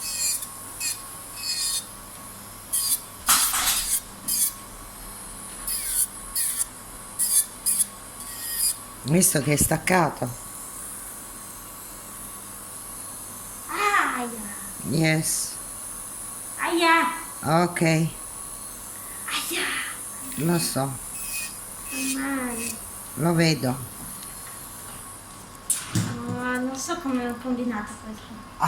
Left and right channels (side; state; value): both; identical; correlation 1.00